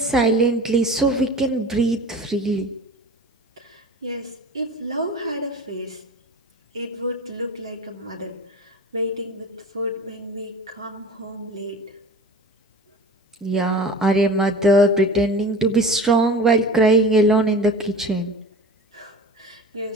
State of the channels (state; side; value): normal; both; correlation 0.37